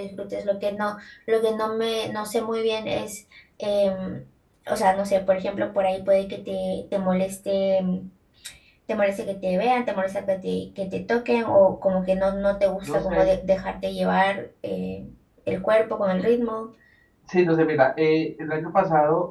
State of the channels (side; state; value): both; identical; correlation 1.00